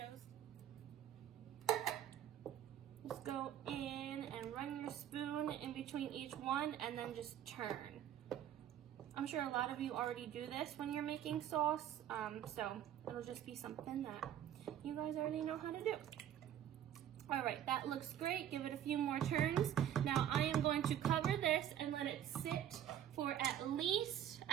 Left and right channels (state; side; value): quieter; left; 10.7 dB